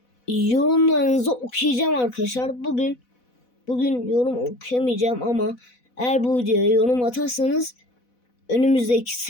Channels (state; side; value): late; right; 4.1 ms